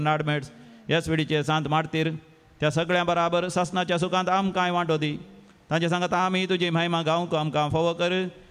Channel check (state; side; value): identical; both; correlation 1.00